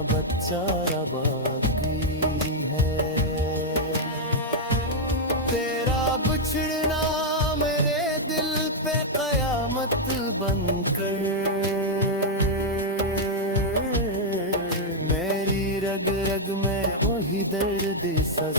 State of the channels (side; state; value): both; normal; correlation -0.02